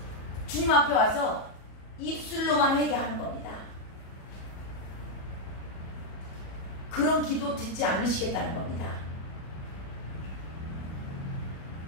주님 앞에 와서 입술로만 회개하는 겁니다. 그런 기도 듣지 않으시겠다는 겁니다.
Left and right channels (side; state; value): right; late; 37 ms